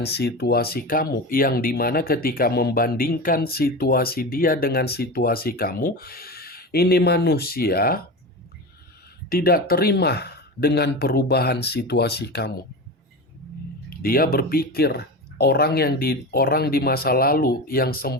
situasi kamu, yang dimana ketika membandingkan situasi dia dengan situasi kamu, ini manusia tidak terima dengan perubahan situasi kamu. Dia berpikir orang di masa lalu yang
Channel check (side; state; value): both; normal; correlation 0.26